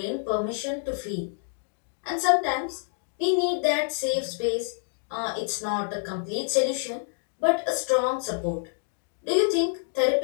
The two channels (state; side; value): silent; right; digital silence